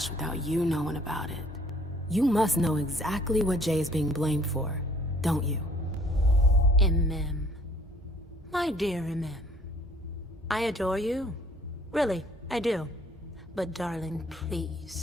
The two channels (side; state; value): both; normal; correlation 0.58